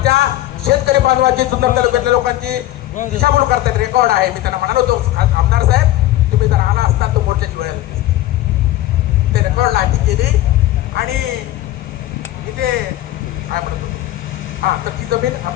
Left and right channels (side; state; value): right; quieter; 15.1 dB